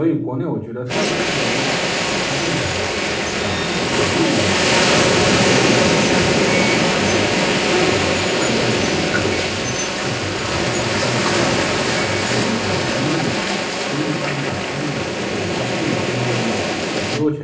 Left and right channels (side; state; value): both; identical; correlation 1.00